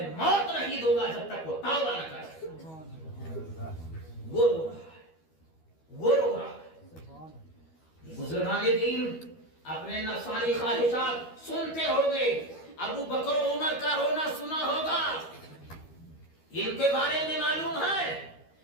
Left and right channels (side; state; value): right; late; 12 ms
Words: موت نہیں دوں گا جب تک وہ توبہ نہ کرے. وہ رو رہا ہے، وہ رو رہا ہے. بزرگان دین اپنے نفسانی خواہشات سنتے ہو گئے. ابو بکر و عمر کا رونا سنا ہوگا، ان کے بارے میں معلوم ہے